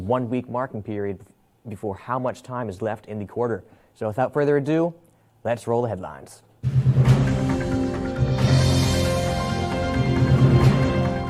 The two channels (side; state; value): both; identical; correlation 1.00